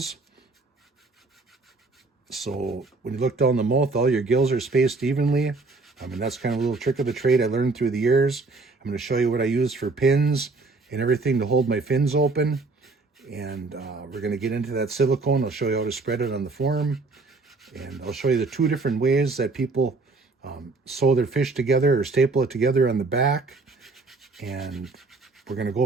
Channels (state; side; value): quieter; left; 3.6 dB